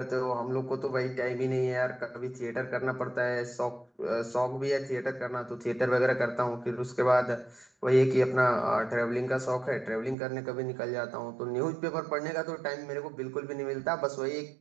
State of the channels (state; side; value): drops out; left; at 10.2 s